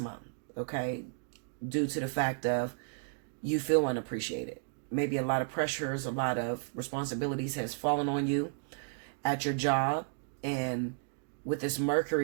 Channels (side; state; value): left; silent; digital silence